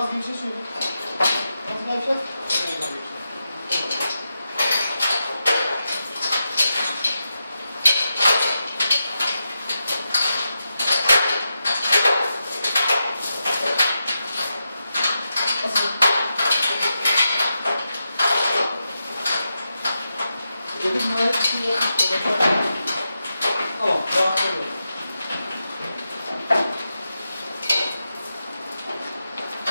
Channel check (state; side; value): inverted; both; correlation -0.88